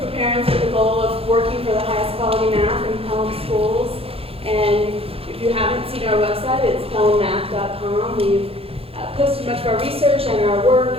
of parents with the goal of working for the highest quality math in Pelham schools. And if you haven't seen our website, it's pelhammath.com. We've posted much of our research and our work,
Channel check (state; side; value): late; left; 0.28 ms